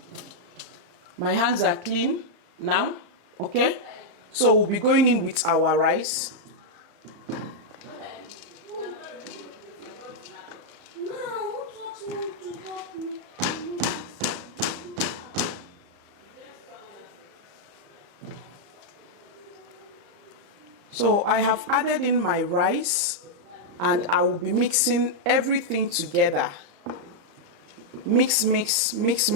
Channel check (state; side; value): late; left; 35 ms